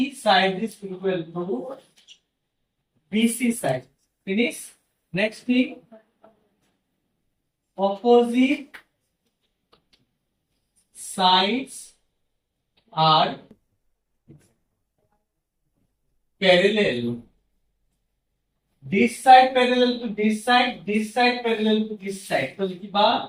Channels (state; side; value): identical; both; correlation 1.00